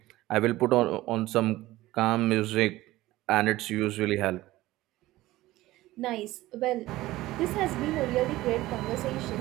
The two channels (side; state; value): left; quieter; 17.3 dB